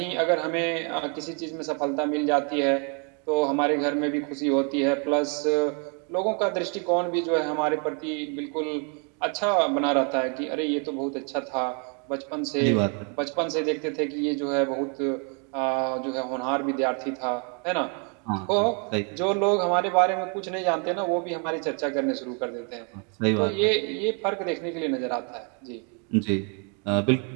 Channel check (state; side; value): quieter; left; 38.2 dB